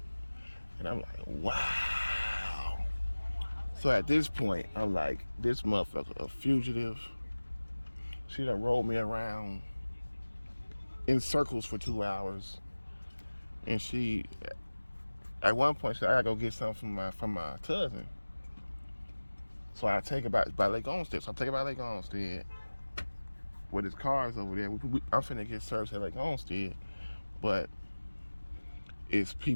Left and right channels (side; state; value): both; inverted; correlation -1.00